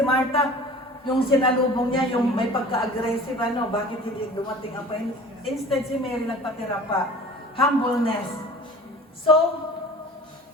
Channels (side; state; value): both; normal; correlation 0.42